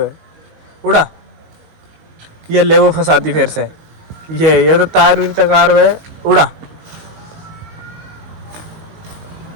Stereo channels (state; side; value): late; left; 19 ms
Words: उड़ा, ये ले वो फंसाती फिर से। ये तो तार उरी तकार है। उड़ा,